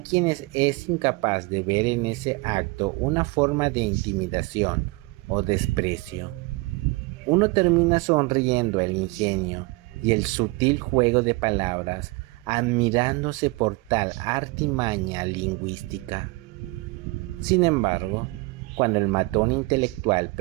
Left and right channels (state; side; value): quieter; left; 24.1 dB